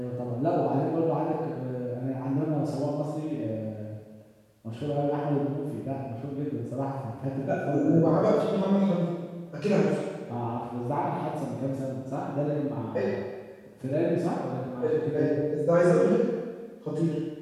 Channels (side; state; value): both; identical; correlation 1.00